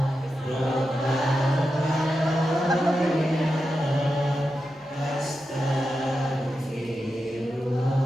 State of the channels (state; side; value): normal; both; correlation 0.89